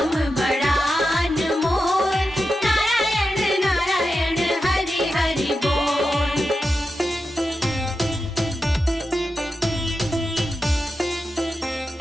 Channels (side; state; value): both; normal; correlation 0.90